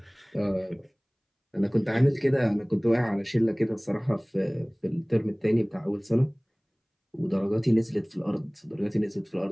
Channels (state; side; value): identical; both; correlation 1.00